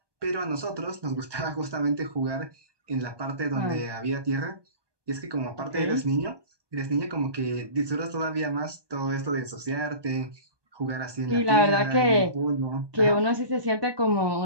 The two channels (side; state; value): left; late; 1.2 ms